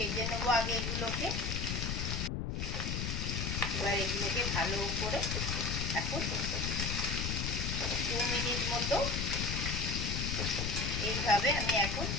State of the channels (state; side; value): noise; left; rumble, 1 dB below the sound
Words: নেবো আগে এগুলোকে। এবার এগুলোকে ভালো করে এখন 2 মিনিট মতো এইভাবে আমি এখন